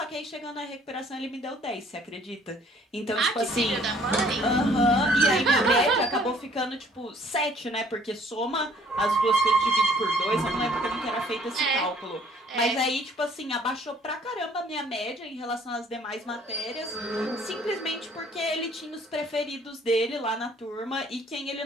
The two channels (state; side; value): normal; both; correlation 0.58